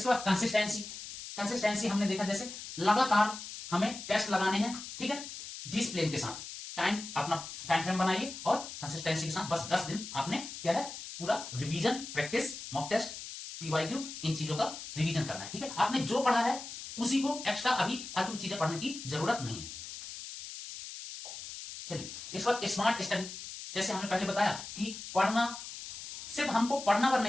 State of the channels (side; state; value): left; noise; hiss, 10 dB below the sound